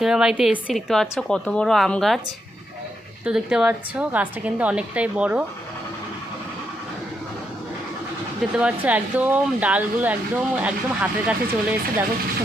বাড়িতে এসেছি, দেখতে পাচ্ছ কত বড় আম গাছ। তো দেখতে পাচ্ছ গাছটা কিন্তু অনেকটাই বড়, দেখতে পাচ্ছ একদম ডালগুলো একদম একদম হাতের কাছে চলে এসেছে। দেখো খুব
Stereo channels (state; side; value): normal; both; correlation 0.80